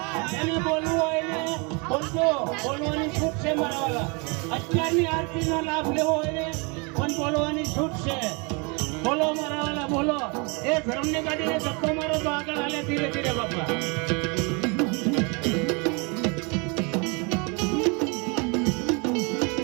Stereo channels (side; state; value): left; quieter; 31.5 dB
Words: જેને બોલવું હોય ને બોલજો, બોલવાની છૂટ છે મારા વાલા. અત્યારની આરતીનો લાભ લેવો હોય ને પણ બોલવાની છૂટ છે. બોલો મારા વાલા, બોલો. એ ધર્મની ગાડીને ધક્કો મારો તો આગળ હાલે ધીરે ધીરે બાપા.